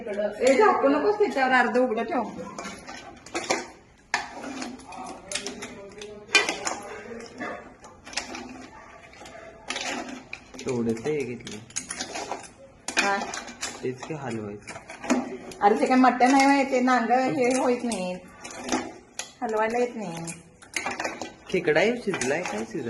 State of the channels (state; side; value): identical; both; correlation 1.00